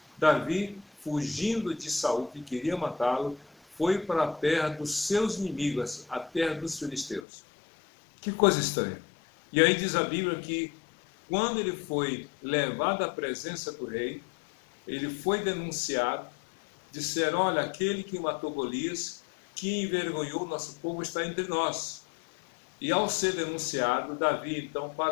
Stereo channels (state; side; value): drops out; right; at 7.2 s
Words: Davi, fugindo de Saul, que queria matá-lo, foi para a terra dos seus inimigos, a terra dos filisteus. Que coisa estranha. E aí diz a Bíblia que quando ele foi levado à presença do rei, ele foi denunciado, disseram, olha, aquele que matou Golias, que envergonhou nosso povo, está entre nós. E ao ser denunciado, Davi, então,